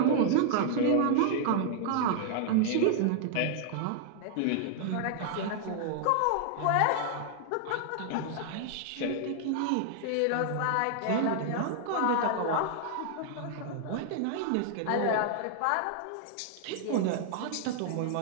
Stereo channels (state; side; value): different; both; correlation -0.01